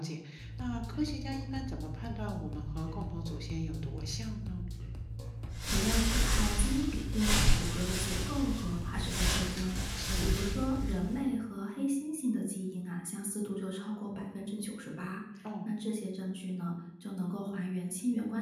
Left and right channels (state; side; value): identical; both; correlation 1.00